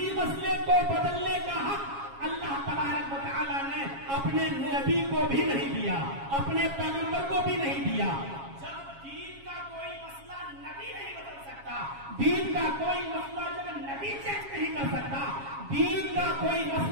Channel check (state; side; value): late; left; 7.3 ms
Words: مسئلے کو بدلنے کا حق اللہ تبارک و تعالیٰ نے اپنے نبی کو بھی نہیں دیا، اپنے پیغمبر کو بھی نہیں دیا. جب دین کا کوئی مسئلہ نبی نہیں بدل سکتا، دین کا کوئی مسئلہ جب نبی چینج نہیں کر سکتا، دین کا کوئی